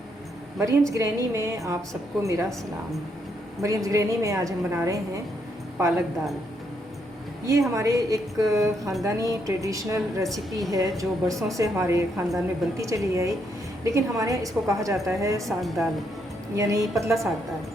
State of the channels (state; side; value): normal; both; correlation 0.76